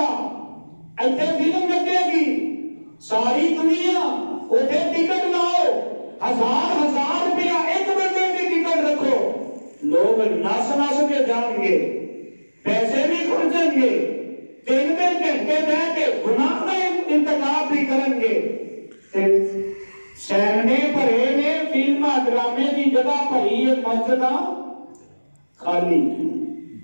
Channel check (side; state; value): both; inverted; correlation -1.00